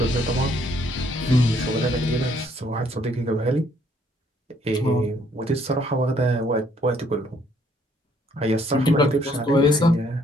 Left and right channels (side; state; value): both; normal; correlation 0.66